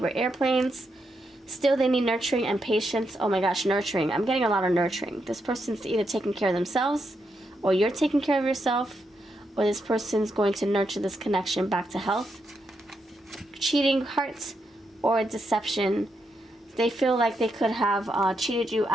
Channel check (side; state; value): both; normal; correlation 0.82